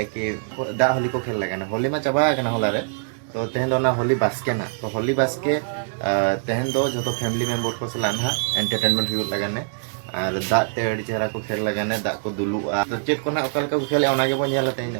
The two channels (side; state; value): left; silent; digital silence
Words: कि दा होली को खेल लगा ना होली में चाबा होला रे तो तेहन दो ना होली बास्के ना तो होली बास्के तेहन दो जो तो फैमिली मेम्बर को सलाह ना एंटरटेनमेंट हुई लगाने और दाग ते अड़ी चेहरा को खेल लगाने दाग को दुलुआ तो चेक को ना ओकाल को खेले ओना के बन नेला तेहन